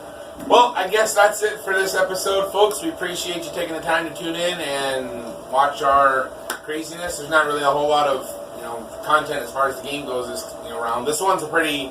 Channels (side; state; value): both; identical; correlation 1.00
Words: Well, I guess that's it for this episode, folks. We appreciate you taking the time to tune in and watch our craziness. There's not really a whole lot of content as far as the game goes this round. This one's a pretty